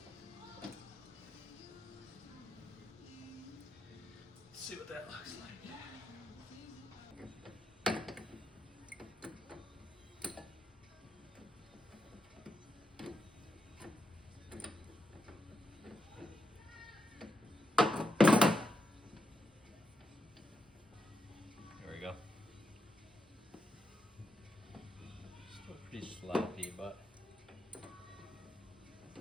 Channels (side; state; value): both; normal; correlation 0.84